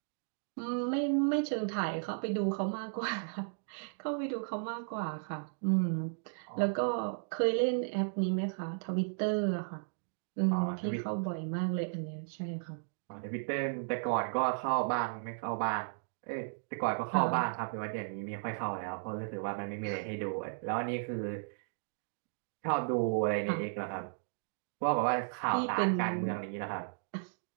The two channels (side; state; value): left; silent; digital silence